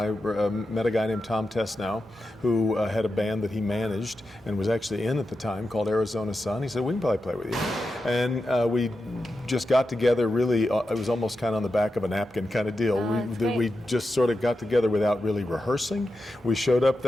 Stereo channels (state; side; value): normal; both; correlation 0.89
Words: met a guy named Tom Tesnow who had a band that he managed and was actually in at the time called Arizona Sun. He said, "We can probably play with you," and we just got together. Really, it was almost kind of on the back of a napkin kind of deal. We just sort of got together without really rehearsing. We showed up